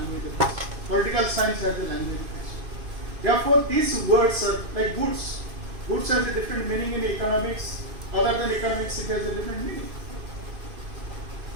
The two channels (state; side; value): late; left; 2.5 ms